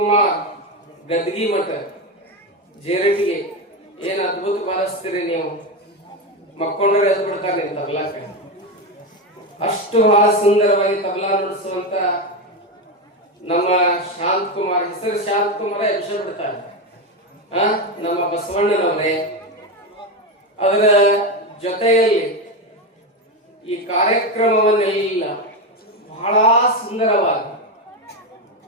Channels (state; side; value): normal; both; correlation 0.13